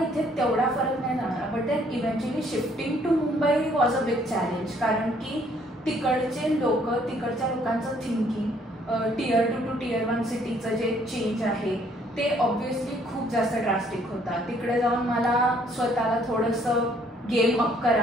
इथे तेवढा फरक नाही जाणवला. But then eventually shifting to Mumbai was a big challenge, कारण की तिकडचे लोक, तिकडच्या लोकांचं थिंकिंग, Tier 2 to Tier 1 सिटीचं जे चेंज आहे ते ऑब्व्हियसली खूप जास्त ड्रास्टिक होता. तिकडे जाऊन मला स्वतःला थोडंसं गेम अप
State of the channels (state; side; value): normal; both; correlation 0.64